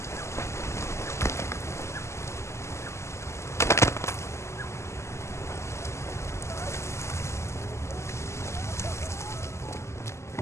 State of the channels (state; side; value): late; right; 0.13 ms